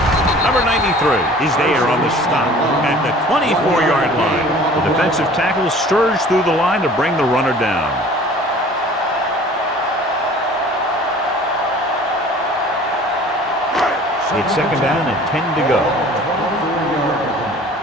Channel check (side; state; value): both; normal; correlation 0.47